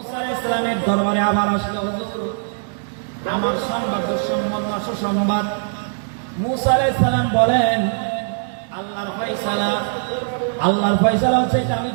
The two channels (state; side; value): silent; left; digital silence